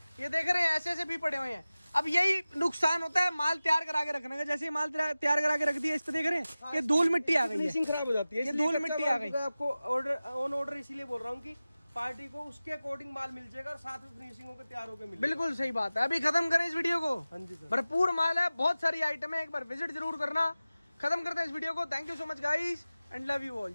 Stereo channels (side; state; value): both; inverted; correlation -0.97